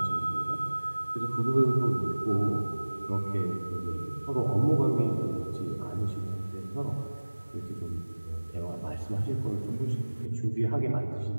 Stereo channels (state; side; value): inverted; both; correlation -1.00